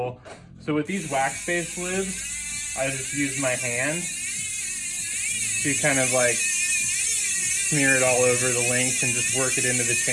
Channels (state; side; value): identical; both; correlation 1.00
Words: So with these wax-based lubes, I just use my hand to kind of like smear it all over the length and just work it into the